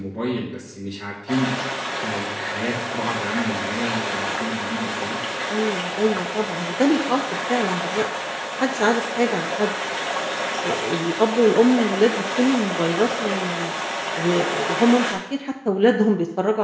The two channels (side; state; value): both; identical; correlation 1.00